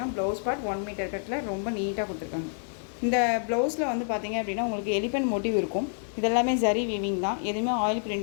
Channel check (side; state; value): right; silent; 59 dB below the other